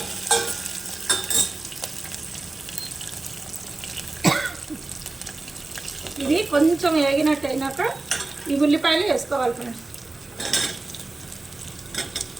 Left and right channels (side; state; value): left; quieter; 3.2 dB